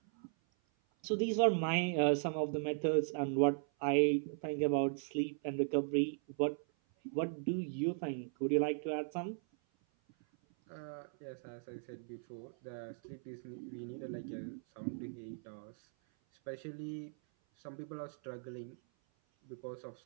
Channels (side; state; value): left; silent; 53 dB below the other